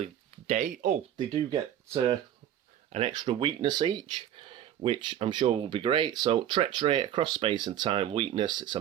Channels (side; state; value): left; quieter; 10.9 dB